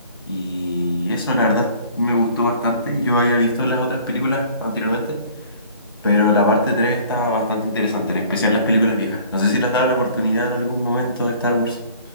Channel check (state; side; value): inverted; both; correlation -0.51